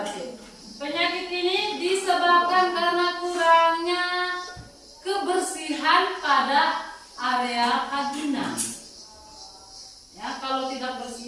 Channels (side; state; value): both; identical; correlation 1.00